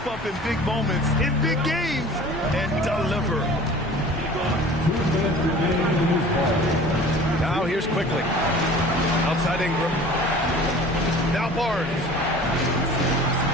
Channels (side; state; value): both; normal; correlation 0.44